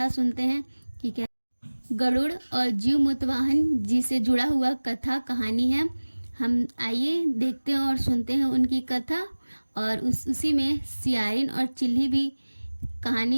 सुनते हैं कि क्या गरुड़ और जीव मुतवाहन जी से जुड़ा हुआ कथा कहानी है। हम आइए देखते हैं और सुनते हैं उनकी कथा। और उसी में सियारिन और चिल्ली भी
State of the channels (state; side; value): inverted; both; correlation -1.00